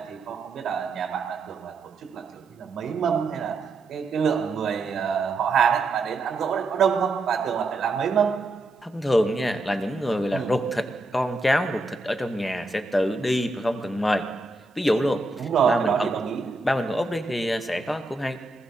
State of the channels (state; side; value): quieter; left; 3.0 dB